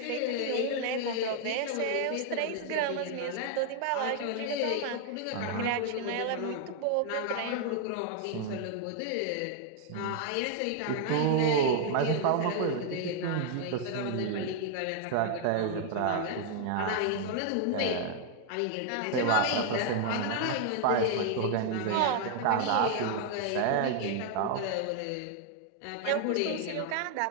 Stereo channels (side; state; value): both; different; correlation 0.00